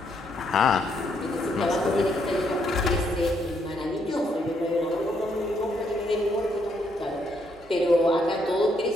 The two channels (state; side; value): normal; both; correlation 0.73